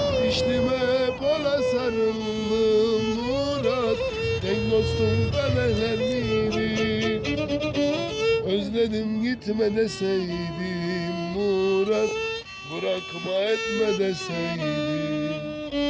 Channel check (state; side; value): identical; both; correlation 1.00